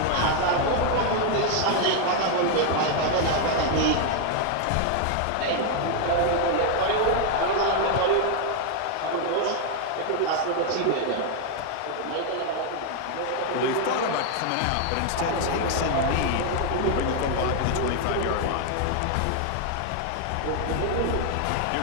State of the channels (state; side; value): different; both; correlation 0.00